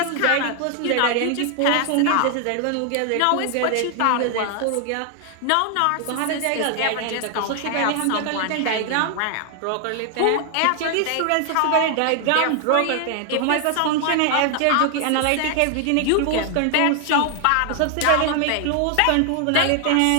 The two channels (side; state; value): both; different; correlation 0.00